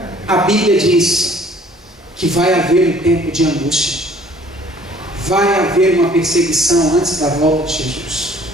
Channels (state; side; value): normal; both; correlation 0.55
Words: a Bíblia diz que vai haver um tempo de angústia, vai haver uma perseguição antes da volta de Jesus.